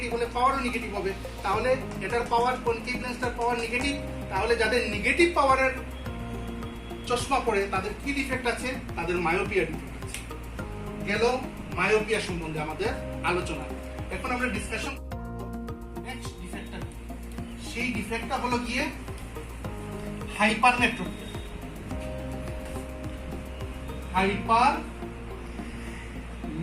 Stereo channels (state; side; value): identical; both; correlation 1.00